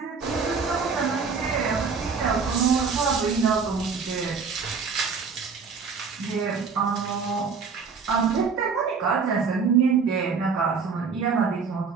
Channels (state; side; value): quieter; left; 5.4 dB